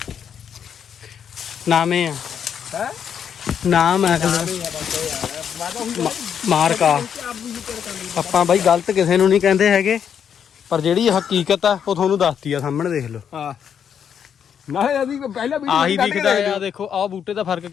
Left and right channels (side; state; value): right; quieter; 8.1 dB